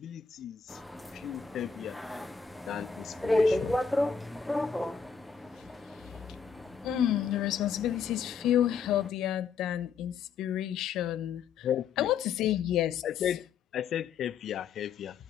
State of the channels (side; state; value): right; quieter; 6.5 dB